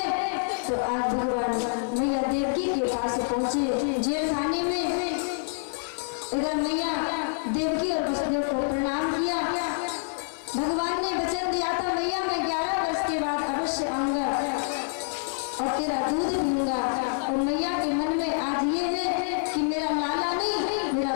और मैया के मन में आज ये है कि मेरा लाला नहीं, मेरा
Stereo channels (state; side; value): silent; right; 60 dB below the other